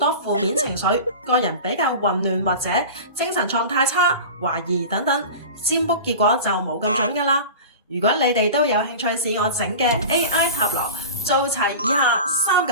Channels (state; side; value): inverted; both; correlation -0.33